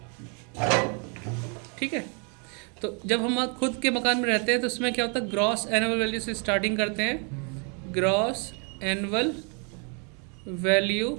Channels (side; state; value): left; quieter; 37.1 dB